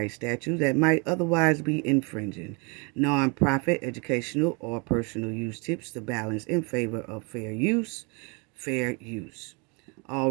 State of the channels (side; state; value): left; quieter; 32.1 dB